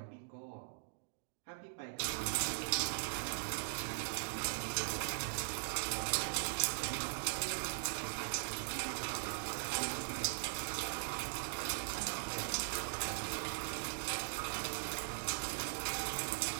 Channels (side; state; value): left; silent; digital silence